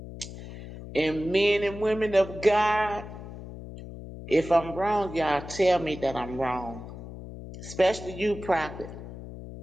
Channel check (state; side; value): noise; left; hum, 12 dB below the sound